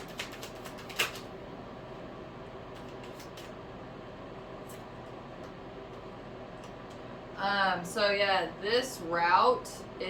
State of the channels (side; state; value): both; identical; correlation 1.00